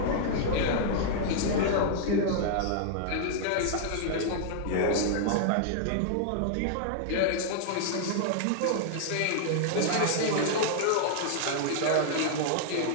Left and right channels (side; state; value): both; different; correlation -0.01